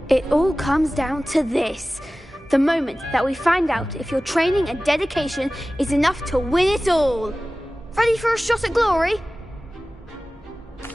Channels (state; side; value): normal; both; correlation 0.97